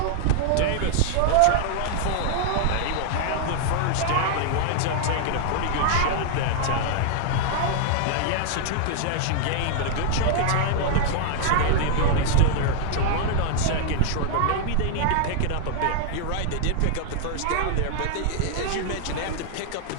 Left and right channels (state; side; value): different; both; correlation -0.01